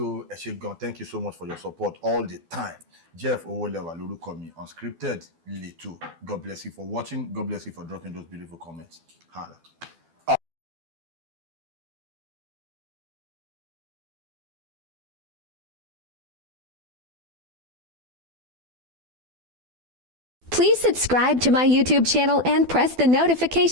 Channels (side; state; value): left; late; 12 ms